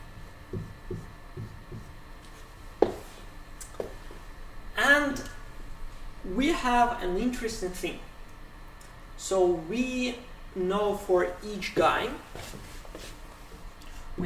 And we have an interesting thing. So we know for each guy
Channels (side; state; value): both; identical; correlation 1.00